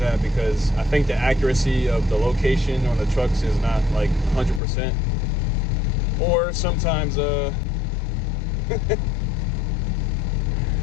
at, because I think the accuracy of the location on the trucks is not like 100%. Or sometimes I'm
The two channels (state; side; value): drops out; right; at 4.6 s